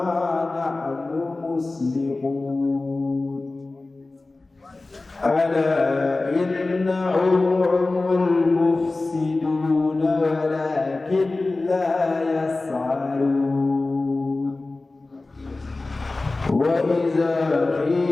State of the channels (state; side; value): quieter; right; 3.3 dB